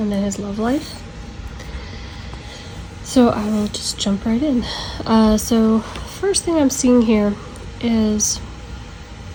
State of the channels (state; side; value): identical; both; correlation 1.00